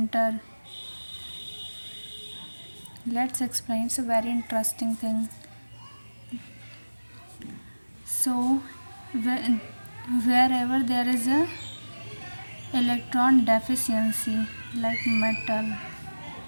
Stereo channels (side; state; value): both; inverted; correlation -1.00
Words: Let's explain. It's a very interesting thing. So wherever there is a electron deficiency, like metal,